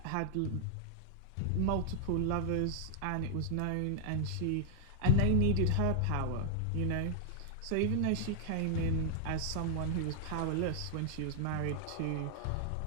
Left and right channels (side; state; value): both; different; correlation 0.00